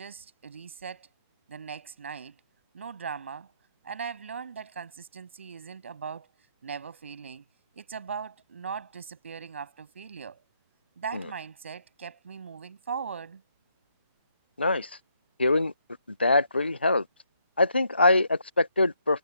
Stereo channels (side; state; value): both; inverted; correlation -0.75